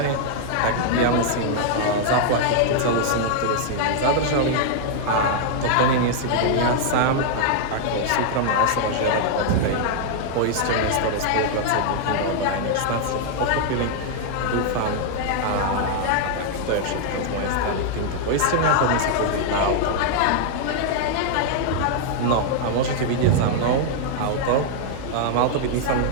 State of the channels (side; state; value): both; different; correlation 0.00